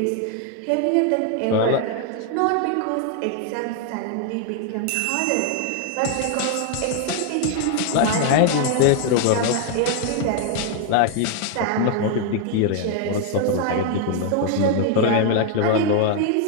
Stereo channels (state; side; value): different; both; correlation 0.00